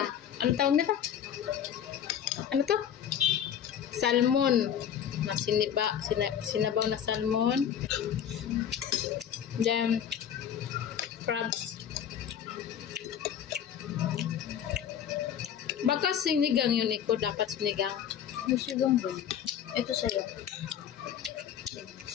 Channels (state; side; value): quieter; right; 9.2 dB